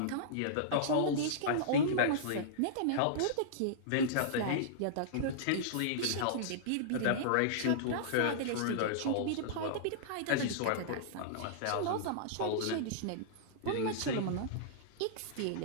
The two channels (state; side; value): different; both; correlation -0.02